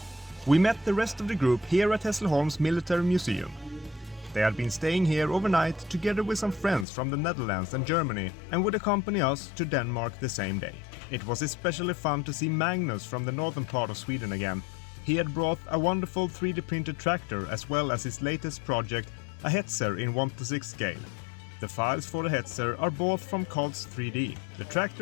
We met the rest of the group here at Hässleholms Military Museum. They had been staying here overnight together with some friends from the Netherlands and Germany and would accompany us to Denmark the same day. It was especially fun to see Magnus from the northern part of Sweden again. He had brought a wonderful 3D printed tractor as well as his latest project, a Hetzer in 1:6 scale. The files for the Hetzer are bought from Cods 3D. The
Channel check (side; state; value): right; drops out; at 6.9 s